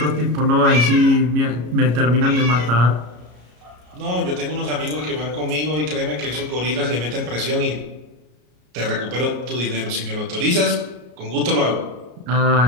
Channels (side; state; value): left; late; 33 ms